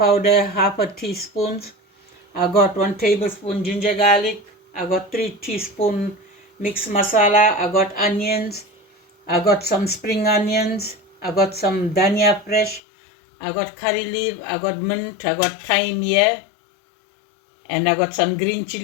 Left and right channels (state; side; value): drops out; right; at 12.8 s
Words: half a teaspoon. I got 1 tablespoon ginger garlic. I got 3 teaspoon mixed masala. I got onions. I got some spring onions. I got some dhania fresh. I got curry leaf. I got mint. I got thyme here. And I got some green